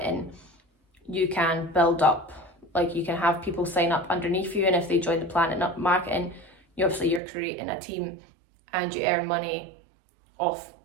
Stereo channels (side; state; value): left; drops out; at 7.2 s